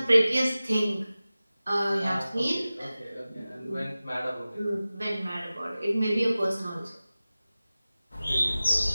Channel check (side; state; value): both; inverted; correlation -0.97